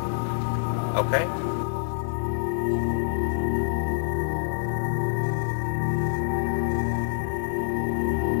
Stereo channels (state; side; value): silent; right; digital silence